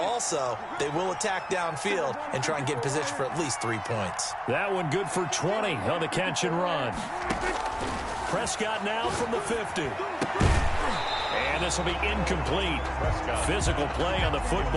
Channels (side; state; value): both; identical; correlation 1.00